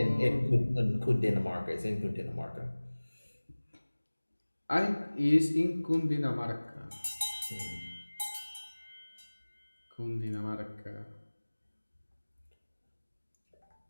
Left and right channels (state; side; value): inverted; both; correlation -1.00